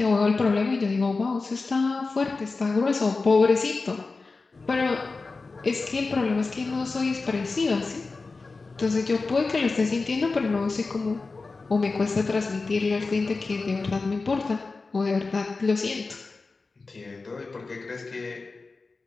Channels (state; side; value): quieter; right; 3.9 dB